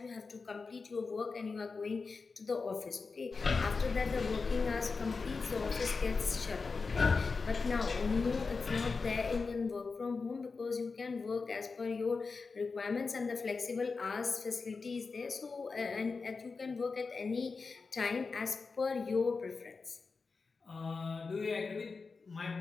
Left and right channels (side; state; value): right; quieter; 4.5 dB